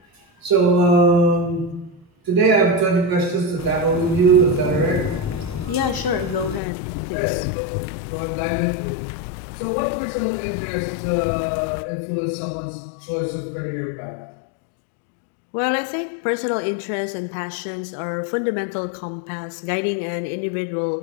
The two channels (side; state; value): right; drops out; at 6.6 s